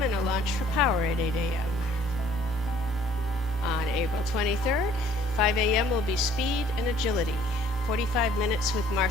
and a launch for Power at 8 a.m. On April 23rd, 5 a.m. will be Speed and Agility, 45 minutes with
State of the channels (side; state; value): both; normal; correlation 0.58